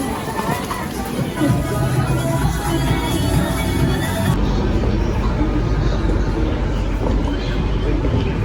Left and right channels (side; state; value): both; identical; correlation 1.00